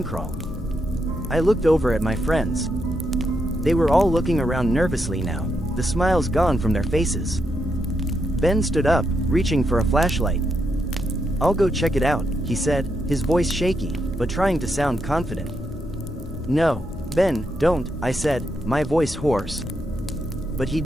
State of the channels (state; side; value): normal; both; correlation 0.81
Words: crawl. I looked over at my friends. They were all looking around nervously now, the smiles gone from their faces. Ben stood up, reaching for a flashlight. "I'll go check it out," he said, his voice shaky, but trying to sound confident. "No, Ben, don't," I said, my voice hoarse. But he